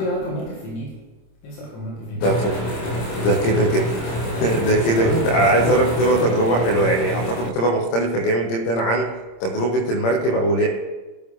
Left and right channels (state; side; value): late; right; 26 ms